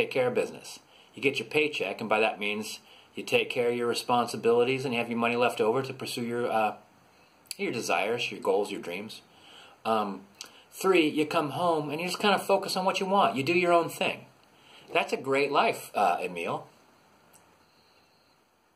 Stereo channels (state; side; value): identical; both; correlation 1.00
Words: care of business. You get your paycheck, and by that means you take care of your responsibilities and you have your money left over to pursue your desires, your goals, your dreams. 3, you come home and you just kind of focus on what you want. You do your own thing. That's a great life, Emil.